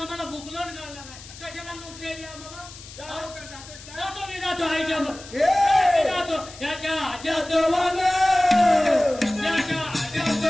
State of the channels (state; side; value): noise; left; hiss, 17 dB below the sound